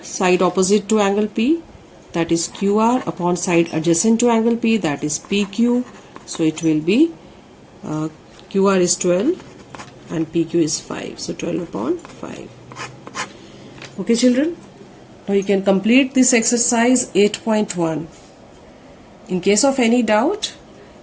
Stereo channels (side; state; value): both; identical; correlation 1.00